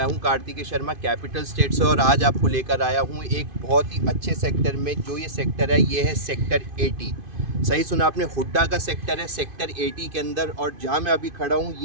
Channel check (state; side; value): late; left; 2.5 ms